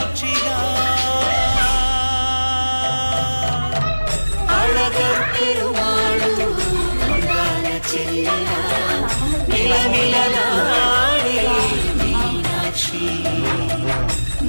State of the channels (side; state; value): both; inverted; correlation -1.00